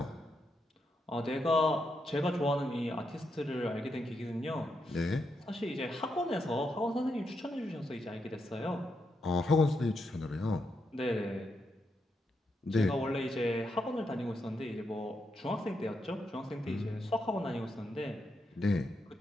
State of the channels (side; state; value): both; normal; correlation 0.82